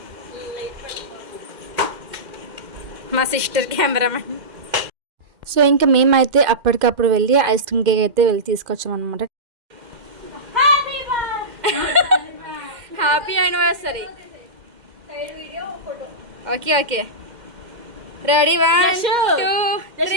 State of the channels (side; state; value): left; late; 2.1 ms